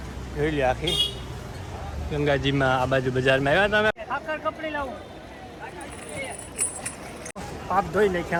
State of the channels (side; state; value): both; identical; correlation 1.00